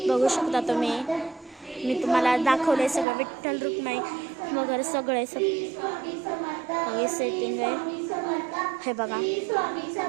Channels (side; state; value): left; drops out; at 3.1 s